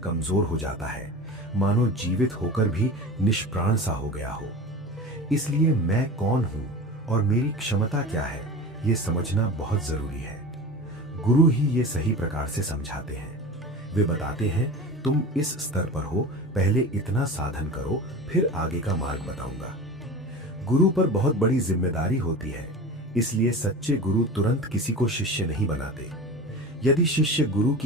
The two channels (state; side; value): normal; both; correlation 0.32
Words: हो जाता है, मानो जीवित होकर भी निष्प्राण सा हो गया हो। इसलिए मैं कौन हूं और मेरी क्षमता क्या है, ये समझना बहुत जरूरी है। गुरु ही ये सही प्रकार से समझाते हैं। वे बताते हैं तुम इस स्तर पर हो, पहले इतना साधन करो, फिर आगे का मार्ग बताऊंगा। गुरु पर बहुत बड़ी जिम्मेदारी होती है, इसलिए सच्चे गुरु तुरंत किसी को शिष्य नहीं बनाते। यदि शिष्य गुरु